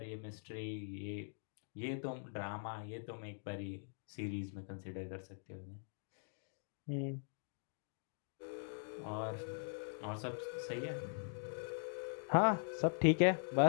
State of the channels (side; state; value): right; silent; digital silence